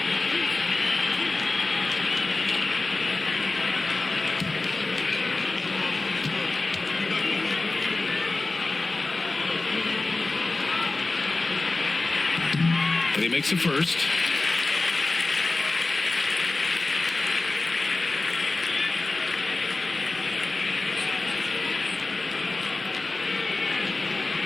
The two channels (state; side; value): quieter; right; 3.3 dB